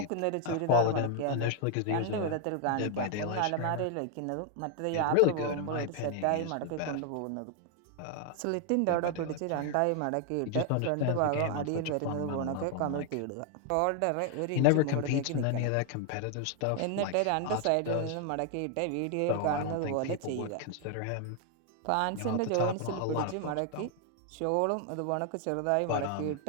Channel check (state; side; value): different; both; correlation 0.00